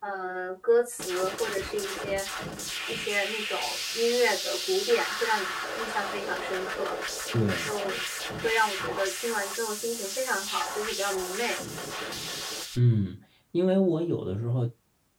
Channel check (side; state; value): both; identical; correlation 1.00